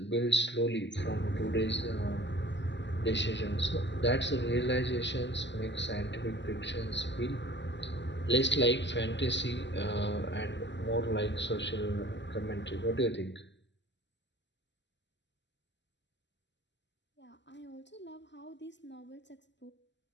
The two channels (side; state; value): right; late; 0.52 ms